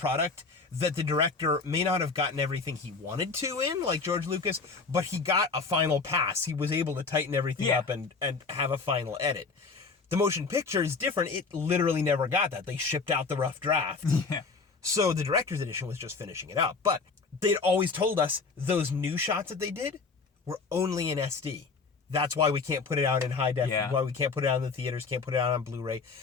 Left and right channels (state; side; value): quieter; right; 4.5 dB